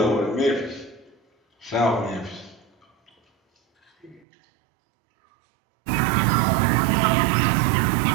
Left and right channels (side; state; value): left; drops out; at 4.2 s